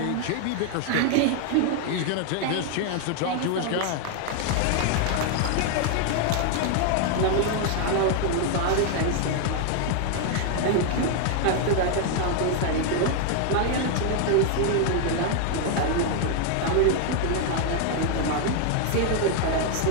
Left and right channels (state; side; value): different; both; correlation 0.00